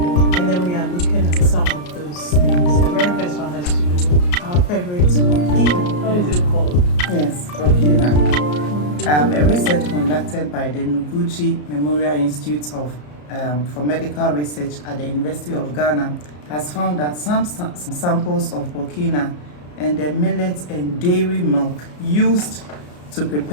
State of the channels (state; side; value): late; right; 34 ms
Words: and then we are looking at some of those things. The very first one has to do with our favorite Burkina. What is it called? Yes, Burkina. A research conducted by the Noguchi Memorial Institute for Medical Research at the University of Ghana has found that some samples of Burkina and the millet and dairy milk used to